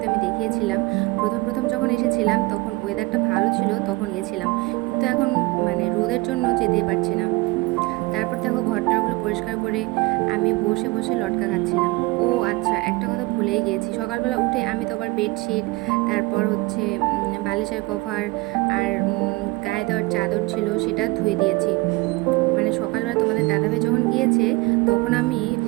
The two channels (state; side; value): quieter; left; 22.9 dB